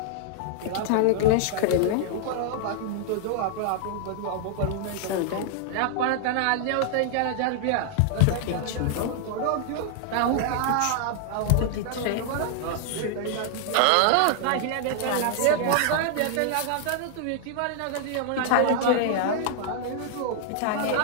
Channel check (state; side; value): different; both; correlation 0.00